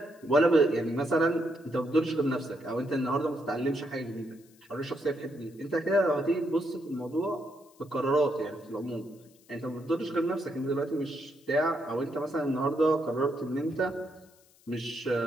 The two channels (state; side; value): noise; left; hiss, 29 dB below the sound